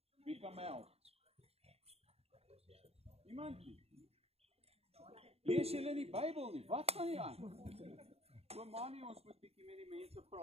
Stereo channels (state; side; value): late; left; 0.29 ms